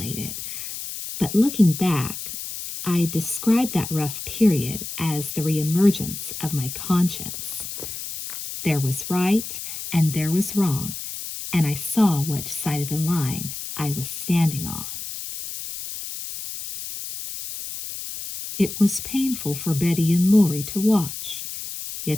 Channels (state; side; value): noise; left; hiss, 8 dB below the sound